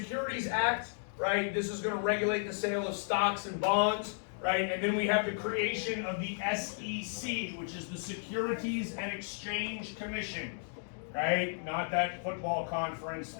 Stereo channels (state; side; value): silent; right; digital silence